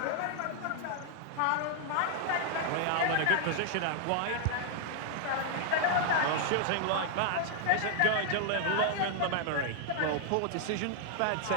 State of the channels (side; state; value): both; different; correlation 0.00